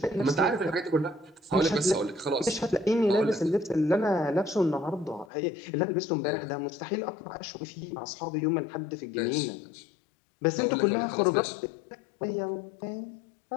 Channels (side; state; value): right; drops out; at 5.3 s